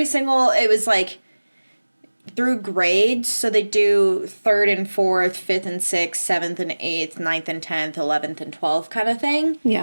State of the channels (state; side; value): inverted; both; correlation -1.00